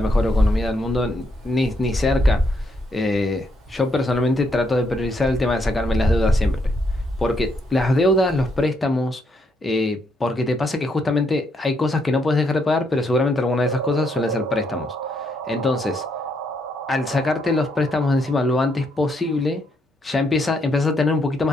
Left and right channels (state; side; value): normal; both; correlation 0.75